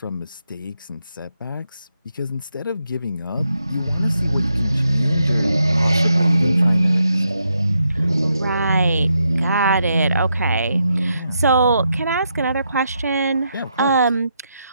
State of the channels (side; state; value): both; inverted; correlation -0.81